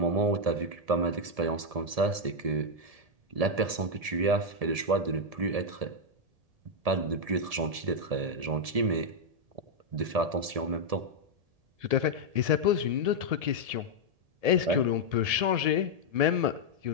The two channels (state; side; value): late; left; 1.7 ms